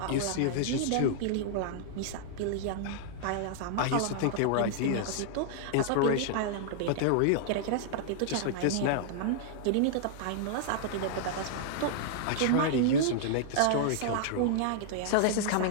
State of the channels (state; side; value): different; both; correlation -0.01